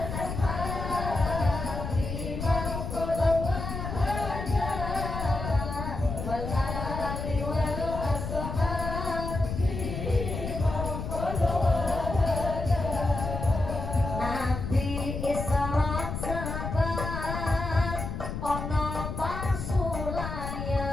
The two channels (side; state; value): left; noise; rumble, 5 dB below the sound